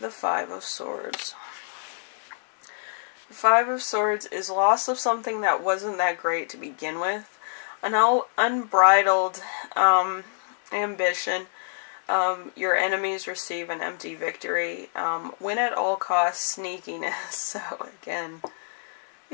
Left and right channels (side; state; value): right; silent; digital silence